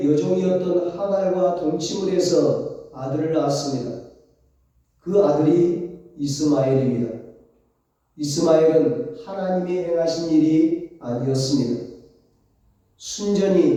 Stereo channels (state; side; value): identical; both; correlation 1.00